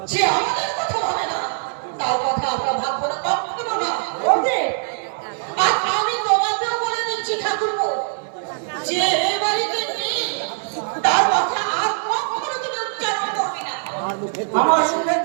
যে আমাদের কথা ভাবে না তার কথা আমরা ভাববো না, কখনো না। বৌদি, আর আমি তোমাকেও বলে দিচ্ছি ঠাকুরপো, যে এই বাড়িতে নেই তার কথা আর কখনো তুমি উচ্চারণ করবে না। আমার মুখের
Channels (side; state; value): left; silent; digital silence